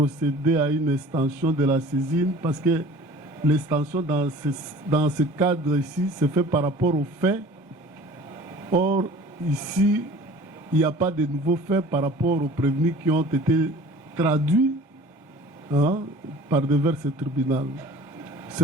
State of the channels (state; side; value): normal; both; correlation 0.45